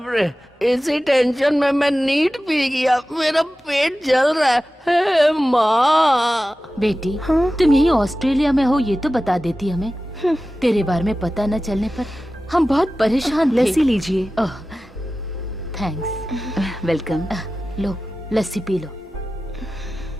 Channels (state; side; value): normal; both; correlation 0.95